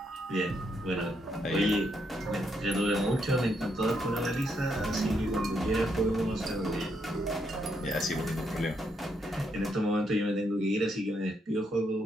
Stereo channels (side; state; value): both; normal; correlation 0.77